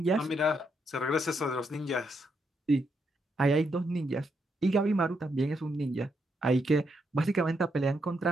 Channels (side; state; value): both; normal; correlation 0.79